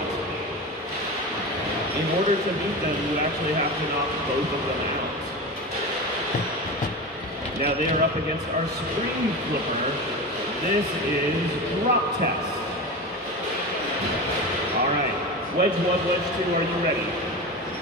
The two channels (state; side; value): normal; both; correlation 0.25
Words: In order to beat them, you actually have to knock both of them out. Now they are up against our screen flipper. This is drop test. All right, Wedge 1, Wedge 2, are you ready?